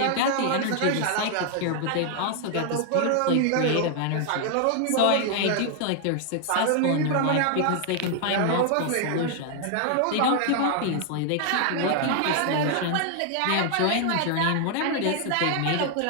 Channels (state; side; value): different; both; correlation 0.00